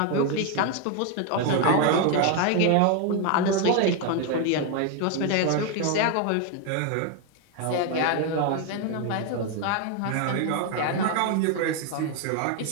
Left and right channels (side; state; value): both; different; correlation 0.01